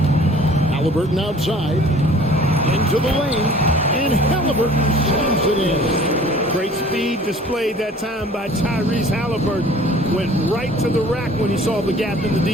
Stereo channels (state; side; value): normal; both; correlation 0.50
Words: Halliburton outside. Into the lane. And Halliburton slams it in. Great speed displayed that time by Tyrese Halliburton. Went right to the rack when he saw the gap in the